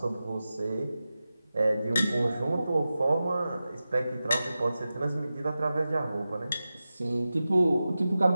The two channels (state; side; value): inverted; both; correlation -0.94